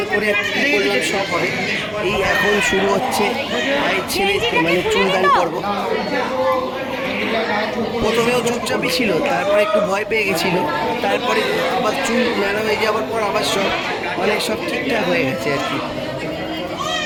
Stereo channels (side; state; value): both; identical; correlation 1.00